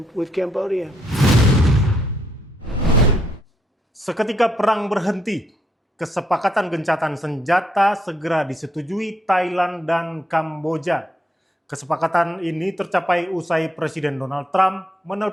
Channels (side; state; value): both; normal; correlation 0.75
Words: with Cambodia. Seketika perang berhenti, kesepakatan gencatan senjata segera disetujui Thailand dan Kamboja. Kesepakatan ini tercapai usai Presiden Donald Trump